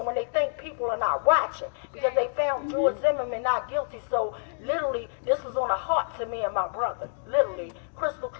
when they think people are not watching, because they found George Zimmerman not guilty. So literally, this was on the heart to me and my brother. Literally, crystal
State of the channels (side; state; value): right; silent; digital silence